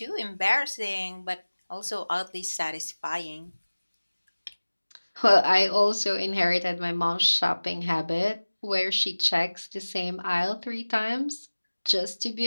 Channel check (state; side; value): inverted; both; correlation -1.00